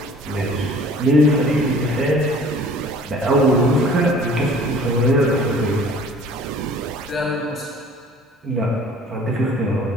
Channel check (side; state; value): both; normal; correlation 0.49